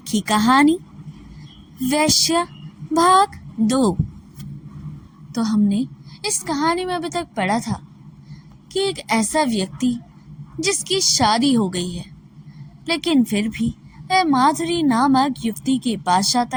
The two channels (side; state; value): both; identical; correlation 1.00